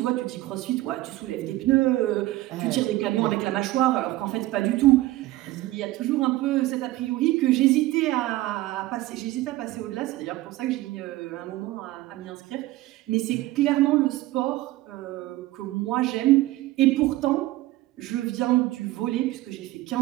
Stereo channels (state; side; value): quieter; left; 17.4 dB